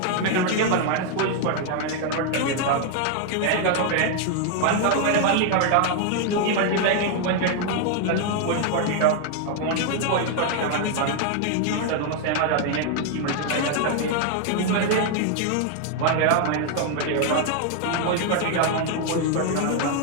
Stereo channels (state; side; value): different; both; correlation 0.00